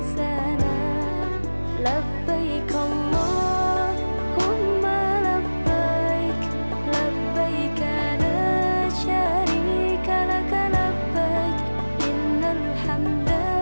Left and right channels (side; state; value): both; inverted; correlation -1.00